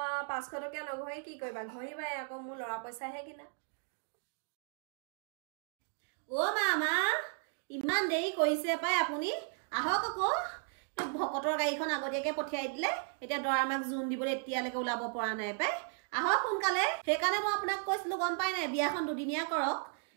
500 টকীয়া নঘহি কি কৰিবা ঘহিবাই আকৌ মোৰ ল'ৰা পইচাহে কিনা মামা ইমান দেৰি কৰিছে পাই আপুনি আহক আকৌ ভকতৰ গাড়ীখন আগতীয়াকে পঠিয়াই দিলে এতিয়া দৰা মাক জোন দিবলৈ এতিয়ালৈকে ওলাব পৰা নাই পাই আহক সোনকালে সেইকাৰণে মই আপোনাক কৈছিলো গম পাই নাই বিয়াখন দুদিনীয়া কৰক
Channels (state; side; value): silent; left; 54 dB below the other